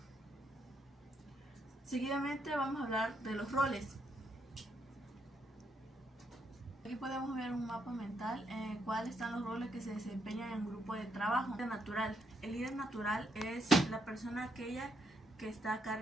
Seguidamente vamos a hablar de los roles. Aquí podemos ver un mapa mental en el cual están los roles que se desempeñan en un grupo de trabajo. El líder natural es la persona aquella que está a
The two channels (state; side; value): normal; both; correlation 0.77